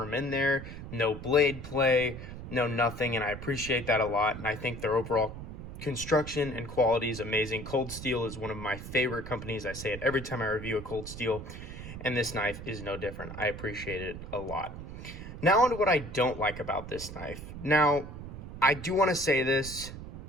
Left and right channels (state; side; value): noise; right; rumble, 10 dB below the sound